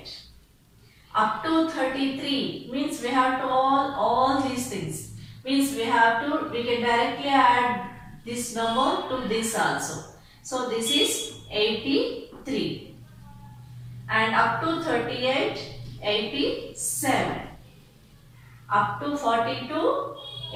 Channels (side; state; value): both; identical; correlation 1.00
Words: Up to 33 means we have to all these things. Means we can directly add this number to this also. So this is 83. And up to 38, 87. Up to 42,